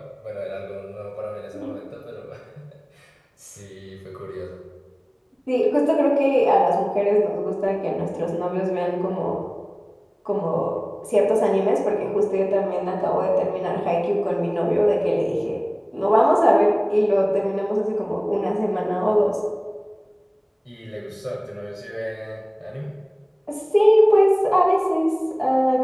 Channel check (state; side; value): identical; both; correlation 1.00